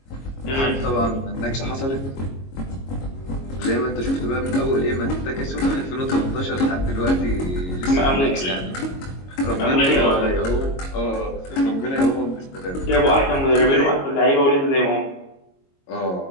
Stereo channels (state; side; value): late; right; 22 ms